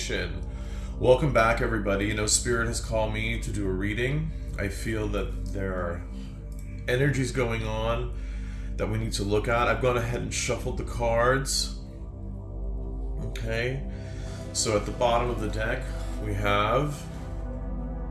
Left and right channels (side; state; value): both; identical; correlation 1.00